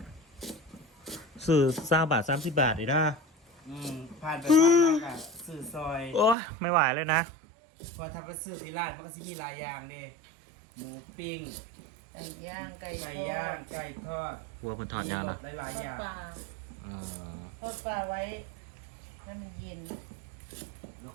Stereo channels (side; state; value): left; drops out; at 6.4 s